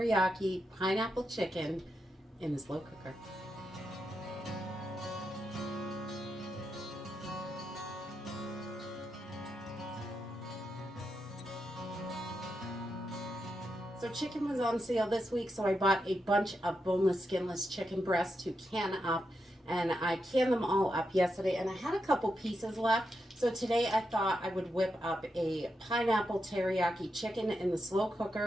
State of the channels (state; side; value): normal; both; correlation 0.85